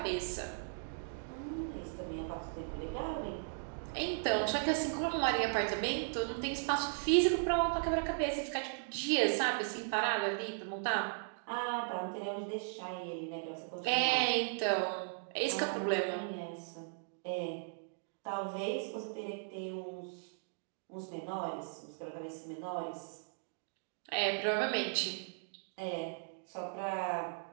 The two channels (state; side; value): silent; left; digital silence